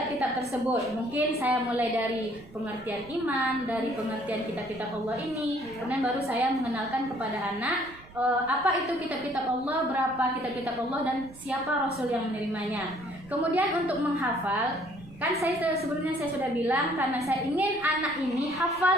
tersebut. Mungkin saya mulai dari pengertian iman, dari pengertian kitab-kitab Allah ini, kemudian baru saya mengenalkan kepada anak apa itu kitab-kitab Allah, berapa kitab-kitab Allah, dan siapa Rasul yang menerimanya. Kemudian untuk menghafal, kan sebelumnya saya sudah bilang karena saya ingin anak ini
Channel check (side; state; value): right; noise; rumble, 21 dB below the sound